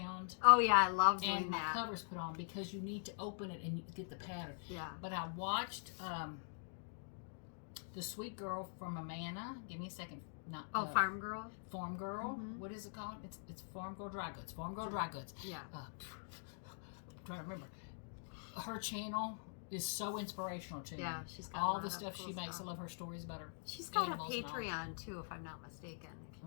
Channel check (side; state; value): right; silent; digital silence